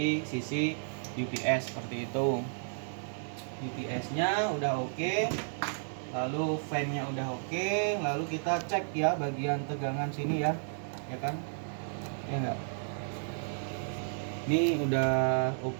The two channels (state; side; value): silent; left; digital silence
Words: sisi UPS seperti itu. UPS-nya udah oke. Lalu fan-nya udah oke. Lalu kita cek ya bagian tegangan sini ya. Ya kan? Ya enggak? Ini udah